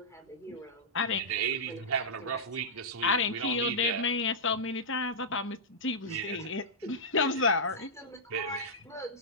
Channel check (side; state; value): both; normal; correlation -0.12